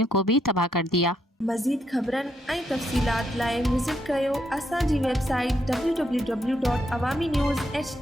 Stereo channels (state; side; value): normal; both; correlation 0.77